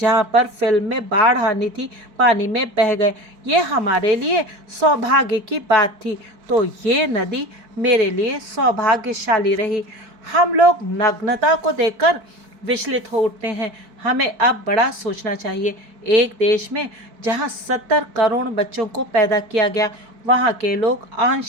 पर फिल्म में बाढ़ आनी थी, पानी में बह गए। ये हमारे लिए सौभाग्य की बात थी। तो ये नदी मेरे लिए सौभाग्यशाली रही। हम लोग नग्नता को देखकर विचलित हो उठते हैं। हमें अब बड़ा सोचना चाहिए। एक देश में जहाँ 70 करोड़ बच्चों को पैदा किया गया, वहाँ के लोग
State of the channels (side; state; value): left; late; 4.6 ms